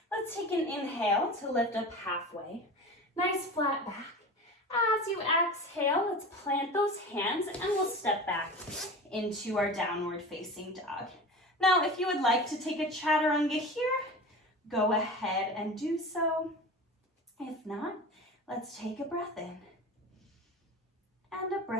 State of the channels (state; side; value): normal; both; correlation 0.33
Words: Let's take an inhale to lift up halfway. Nice flat back. As you exhale, let's plant those hands and we'll step back into our downward facing dog. Now, if you would like to take a chaturanga here, go ahead and do so. If not, let's take a breath in and a